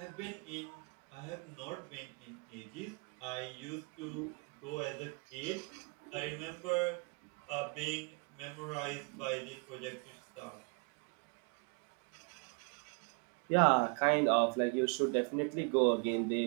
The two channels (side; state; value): left; quieter; 33.9 dB